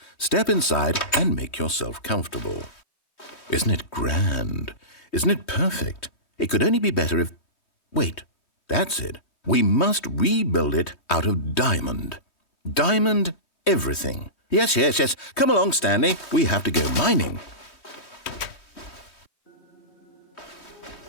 step inside and make yourself comfortable. Isn't it grand? Isn't it perfect? It could only be better if... Wait, that's it. We must rebuild it out of diamond. Diamond everything. Yes. Come along, Stanley. We have to go mining.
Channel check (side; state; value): right; late; 3.2 ms